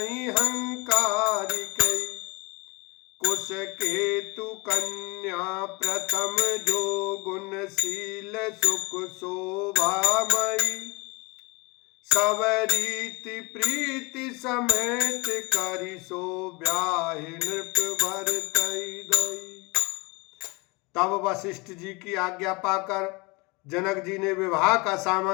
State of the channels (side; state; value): right; quieter; 26.8 dB